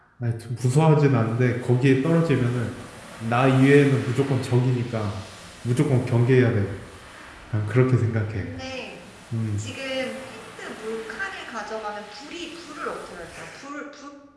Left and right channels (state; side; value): identical; both; correlation 1.00